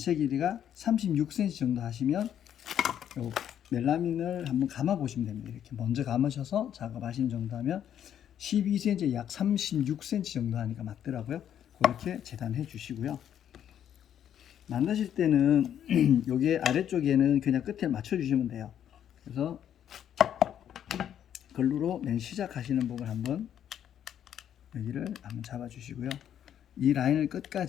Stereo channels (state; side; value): quieter; right; 9.8 dB